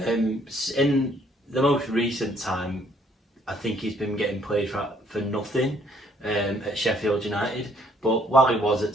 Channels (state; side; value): normal; both; correlation 0.65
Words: In the most recent time, I think he's been getting played for nothing at Sheffield United. But while he was